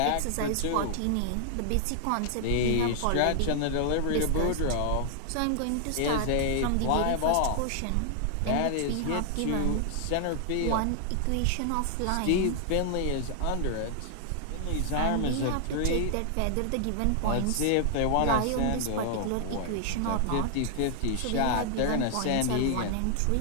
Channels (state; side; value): different; both; correlation 0.00